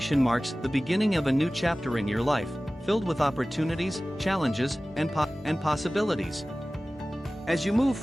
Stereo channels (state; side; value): normal; both; correlation 0.97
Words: marks the beginning of a new chapter in your life, filled with opportunities, challenges, and possibilities. As you move